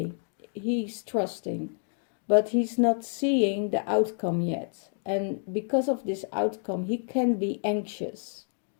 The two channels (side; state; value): right; silent; 59 dB below the other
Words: He's trusting, but he's not seeing the outcome yet, and because of this outcome, he can be anxious.